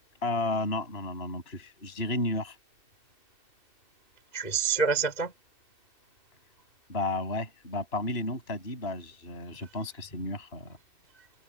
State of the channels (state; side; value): late; right; 2.6 ms